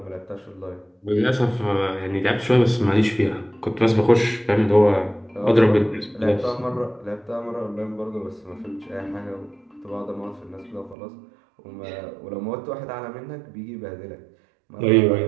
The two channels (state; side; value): drops out; left; at 11.0 s